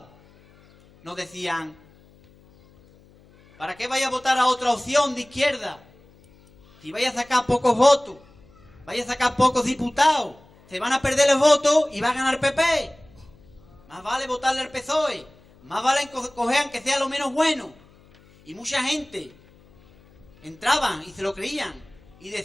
Nos decían, ¿para qué vaya a votar a otra opción de izquierda? Si vaya a sacar pocos votos, vaya a sacar pocos diputados, se van a perder los votos y va a ganar PP. Más vale votarle al PSOE, más vale coger aunque sea lo menos bueno. Y mucha gente entraban y se lo creían y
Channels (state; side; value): noise; left; hum, 27 dB below the sound